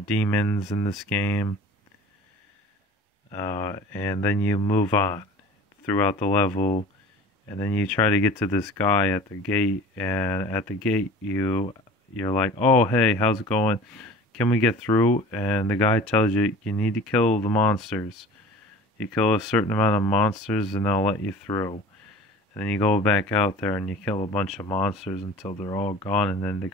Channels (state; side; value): normal; both; correlation 0.41